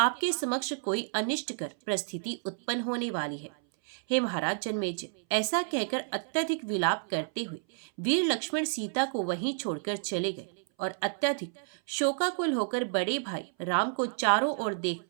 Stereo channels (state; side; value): silent; left; 58 dB below the other